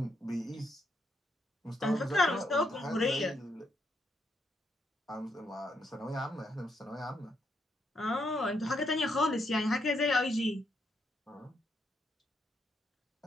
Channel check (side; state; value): both; normal; correlation 0.78